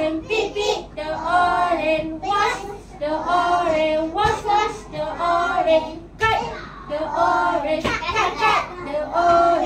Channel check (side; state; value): both; identical; correlation 1.00